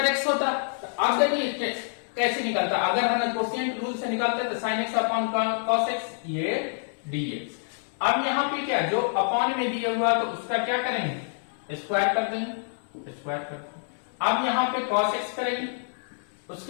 एक्स होता। तो अब देखिए कैसे निकलता, अगर हम कोशिएंट रूल से निकालते हैं तो sin x upon cos x ये dx। अब यहाँ पे क्या, जो अपॉन में दिया हुआ तो उसका क्या करेंगे, स्क्वायर कर देंगे, स्क्वायर कर देंगे। अब यहाँ पे cos एक्स करेंगे,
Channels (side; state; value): right; silent; digital silence